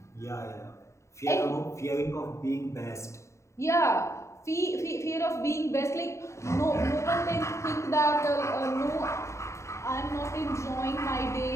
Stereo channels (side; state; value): right; late; 0.14 ms